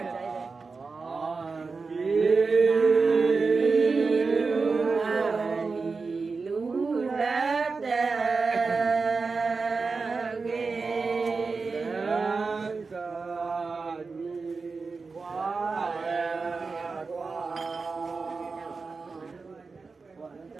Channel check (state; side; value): quieter; left; 4.4 dB